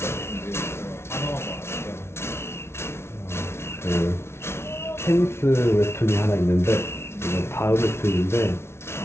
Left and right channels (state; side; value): late; right; 0.12 ms